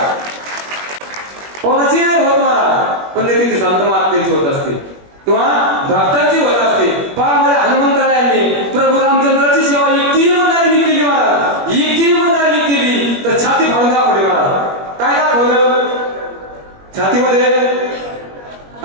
कोणाची नाही होत महाराज. पुण्यतिथी संत महात्म्यांची होत असते किंवा भक्तांची होत असते. पहा माझ्या हनुमंतरायांनी प्रभू रामचंद्राची सेवा एकटी इमानदारीने केली महाराज. एकटी इमानदारीने केली तर छाती फाडून दाखवली महाराज. काय दाखवलं छातीमध्ये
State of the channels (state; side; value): late; left; 21 ms